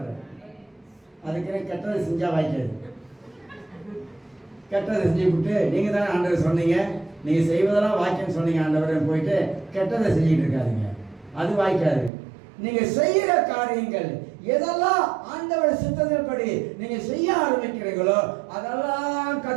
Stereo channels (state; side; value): drops out; left; at 12.1 s